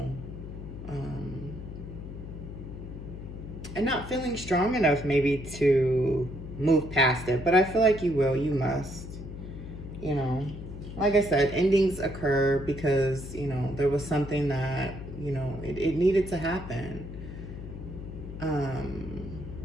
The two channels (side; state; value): left; noise; hum, 10 dB below the sound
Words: And not feeling strong enough maybe to move past it, but I feel like you will, you must, you know. Like I said, endings occur because, you know, there was something that, you know, it needed to happen.